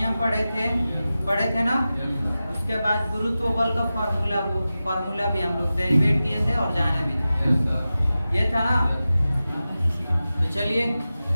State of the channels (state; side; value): inverted; both; correlation -0.94